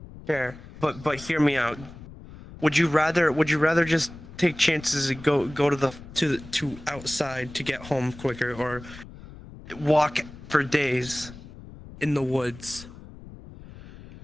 Fair, but hear me out. Would you rather just take chances and go to outside to get home quicker, or walk for days in the woods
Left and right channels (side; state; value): left; noise; rumble, 17 dB below the sound